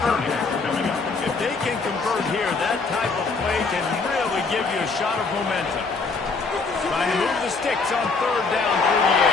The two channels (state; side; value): quieter; right; 4.2 dB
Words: coming. If they can convert here, that type of play can really give you a shot of momentum. Trying to move the sticks on third down through the